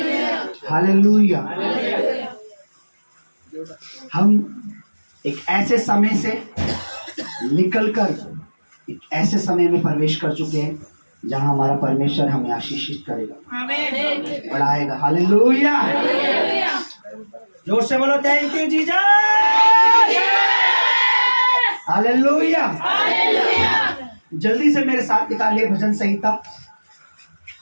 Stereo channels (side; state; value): both; inverted; correlation -1.00